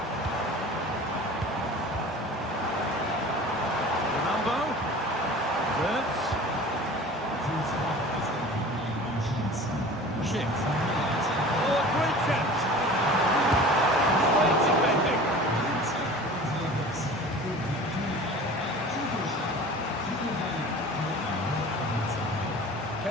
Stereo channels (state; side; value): normal; both; correlation 0.41